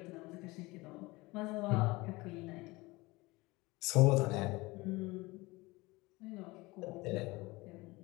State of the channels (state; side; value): quieter; right; 22.3 dB